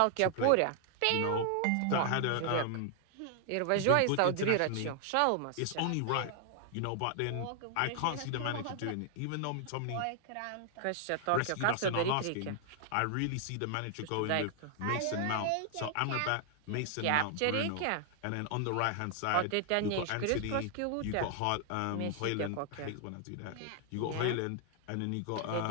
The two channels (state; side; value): different; both; correlation 0.00